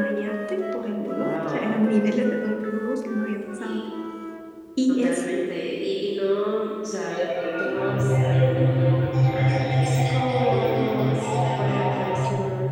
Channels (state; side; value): identical; both; correlation 1.00